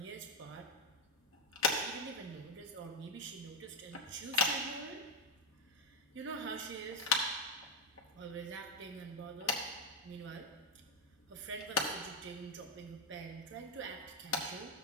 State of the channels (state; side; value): normal; both; correlation 0.04